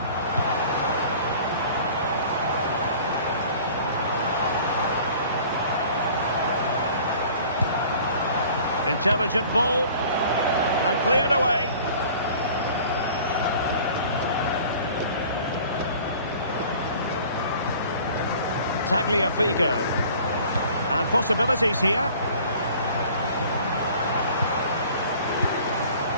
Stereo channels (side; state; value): both; inverted; correlation -0.48